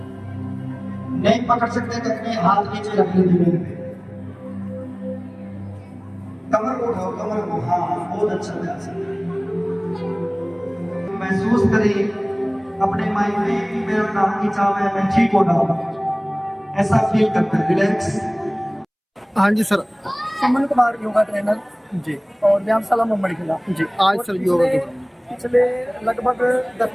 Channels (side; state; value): both; identical; correlation 1.00